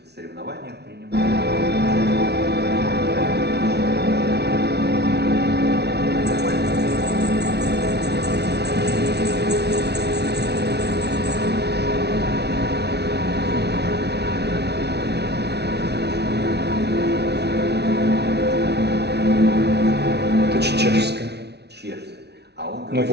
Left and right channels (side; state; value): left; late; 0.49 ms